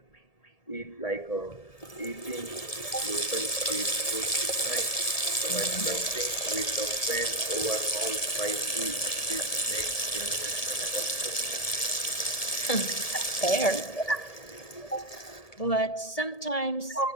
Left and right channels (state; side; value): late; right; 1.7 ms